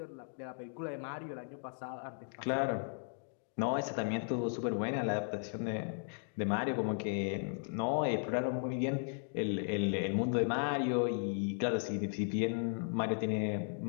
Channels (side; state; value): right; silent; digital silence